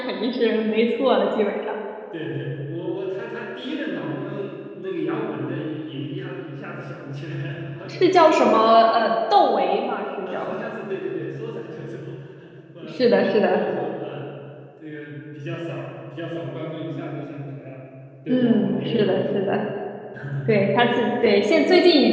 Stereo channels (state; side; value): identical; both; correlation 1.00